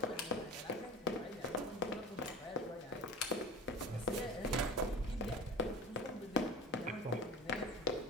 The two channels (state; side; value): normal; both; correlation 0.35